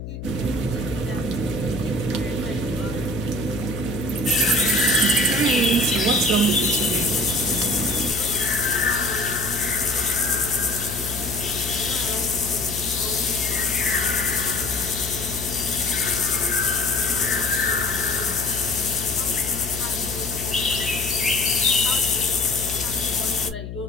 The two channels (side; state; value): left; noise; hum, 9 dB below the sound